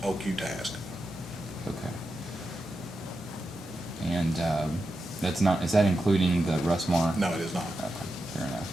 OQ tasks. Okay. And that's not, is that including the Russmore? No, it is not. Okay, fair enough.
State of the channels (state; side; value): normal; both; correlation 0.89